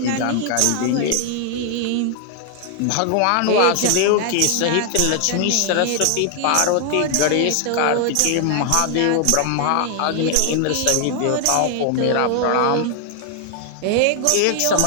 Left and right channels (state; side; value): different; both; correlation 0.00